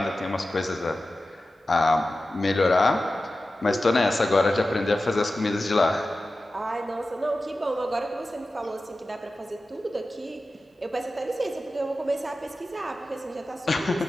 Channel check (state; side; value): normal; both; correlation 0.94